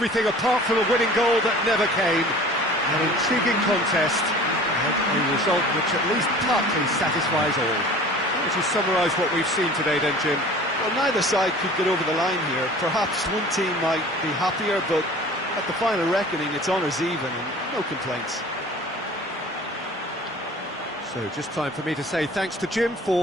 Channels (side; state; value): both; normal; correlation 0.44